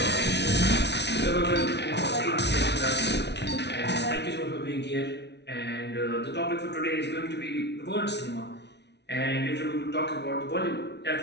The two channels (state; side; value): late; right; 0.50 ms